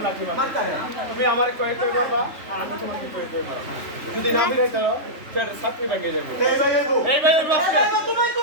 লাঠি মারে মারতে হবে তুমি আমার কয়েক কয়ে মারবা আর আমি তোমাকে কয়েক কয়ে মারবা যদি না ফিরাই তারো সেটা সাতমি ব্যাংকে যাবো এই ভাই এগো এই ভাই এর বাসকে তুমি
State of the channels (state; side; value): late; left; 3.4 ms